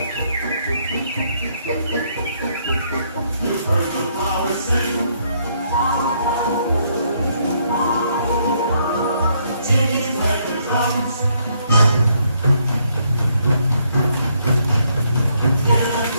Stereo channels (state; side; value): inverted; both; correlation -0.72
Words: You heard the flowers sing.